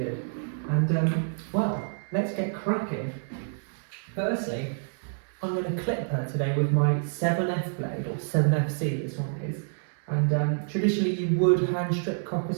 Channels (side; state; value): left; silent; 59 dB below the other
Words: And, well, let's get cracking. Firstly, I'm going to clip her today with my 7F blade, or 7FC this one is. And traditionally you would hand strip Cocker